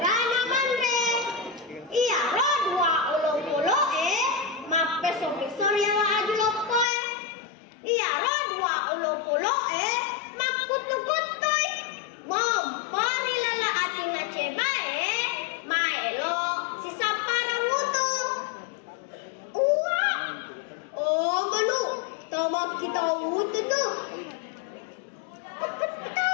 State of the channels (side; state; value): right; drops out; at 6.9 s